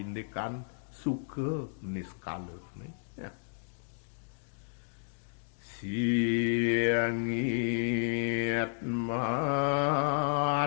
suka niskalene ya. Siangit matera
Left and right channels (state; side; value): silent; right; digital silence